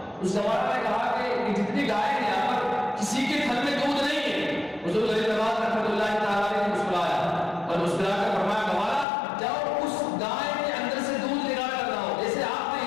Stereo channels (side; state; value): right; drops out; at 9.1 s